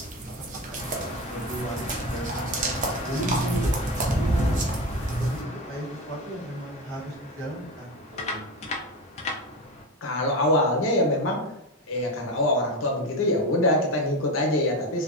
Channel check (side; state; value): both; normal; correlation 0.20